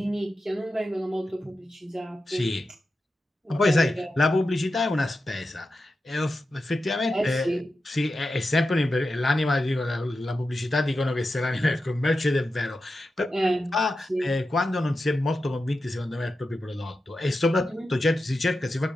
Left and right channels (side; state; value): both; normal; correlation 0.91